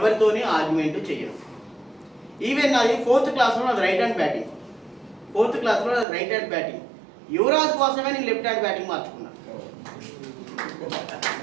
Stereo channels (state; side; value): drops out; left; at 6.1 s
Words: ఆర్గ్యుమెంట్ చేయను. ఈవెన్ నాది 4th క్లాస్లో నాది రైట్ హ్యాండ్ బ్యాటింగ్. యువరాజ్ కోసమే నేను లెఫ్ట్ హ్యాండ్ బ్యాటింగ్ మార్చుకున్నాను.